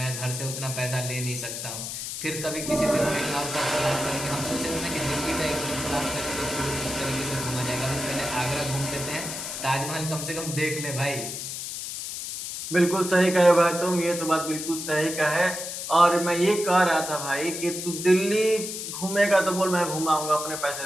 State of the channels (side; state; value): left; noise; hiss, 6 dB below the sound